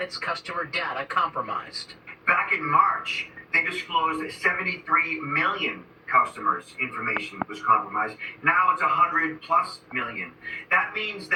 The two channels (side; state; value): both; identical; correlation 1.00